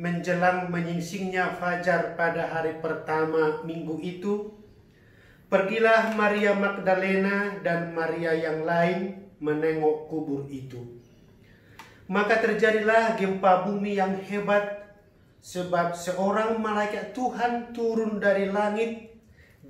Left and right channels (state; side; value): identical; both; correlation 1.00